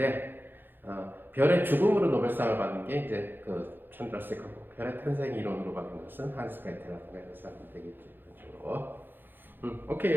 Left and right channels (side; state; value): left; late; 0.097 ms